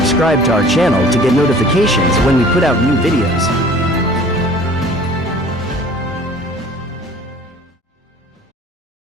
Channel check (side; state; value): both; normal; correlation 0.48